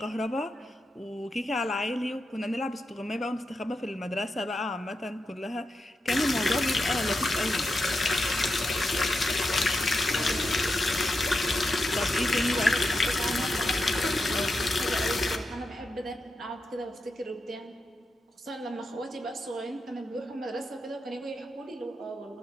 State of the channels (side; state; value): both; normal; correlation 0.87